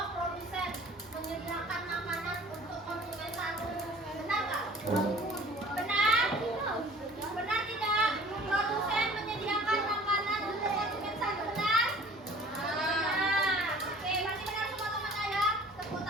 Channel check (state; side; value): normal; both; correlation 0.48